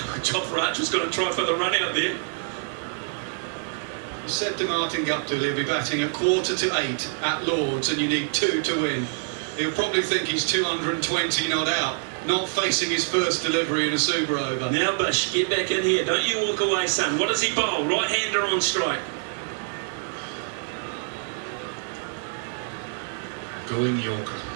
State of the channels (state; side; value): silent; left; 58 dB below the other